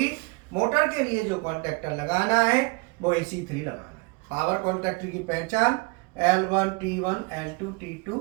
मोटर के लिए जो कॉन्ट्रैक्टर लगाना है वो AC3 लगाना है। पावर कॉन्ट्रैक्टर की पहचान L1 T1 L2 T2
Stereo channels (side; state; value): left; quieter; 27.9 dB